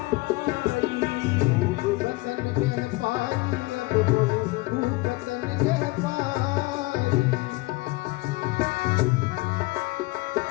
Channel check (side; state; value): right; quieter; 22.3 dB